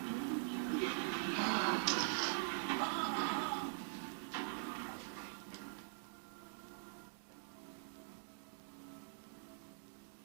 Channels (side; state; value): left; silent; digital silence